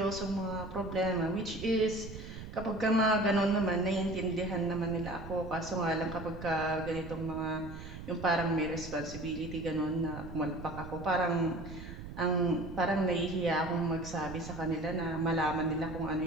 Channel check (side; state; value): right; noise; rumble, 11 dB below the sound